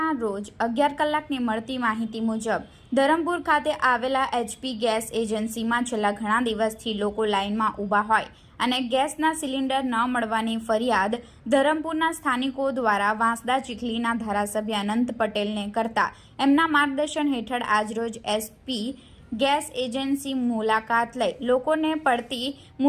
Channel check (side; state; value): both; identical; correlation 1.00